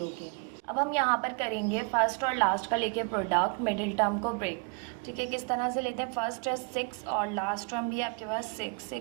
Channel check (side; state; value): left; quieter; 35.4 dB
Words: के। अब हम यहाँ पर करेंगे फर्स्ट और लास्ट का लेके प्रोडक्ट, मिडिल टर्म को ब्रेक। ठीक है, किस तरह से लेते हैं, फर्स्ट है 6 और लास्ट टर्म भी आपके पास 6